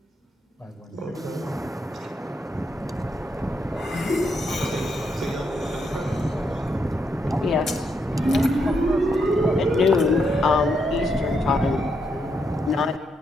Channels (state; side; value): normal; both; correlation 0.79